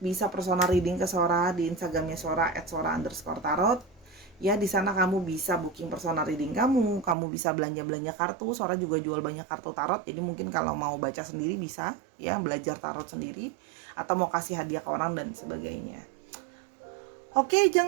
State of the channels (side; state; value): left; drops out; at 7.2 s